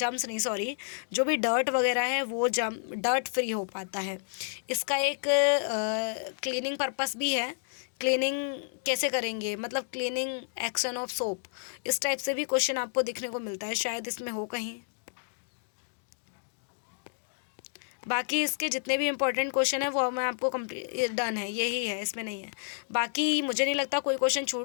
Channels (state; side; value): silent; right; digital silence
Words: नहीं सॉरी, जो भी डर्ट वगैरह है वो डर्ट फ्री हो पाता है। इसका एक क्लीनिंग पर्पस भी है। क्लीनिंग कैसे करेंगे, मतलब क्लीनिंग एक्शन ऑफ सोप, इस टाइप से भी क्वेश्चन आपको दिखने को मिलता है, शायद इसमें हो कहीं। बाकी इसके जितने भी इंपॉर्टेंट क्वेश्चन है वो मैं आपको कंप्लीट डन है, यही है, इसमें नहीं है। बाकी मुझे नहीं लगता कोई क्वेश्चन